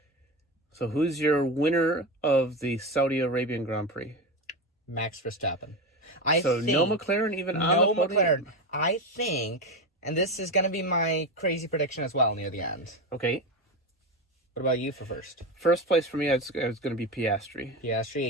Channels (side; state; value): both; normal; correlation 0.19